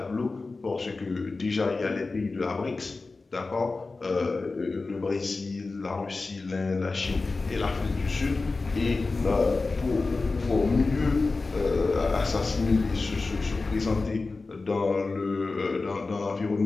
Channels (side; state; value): right; quieter; 3.7 dB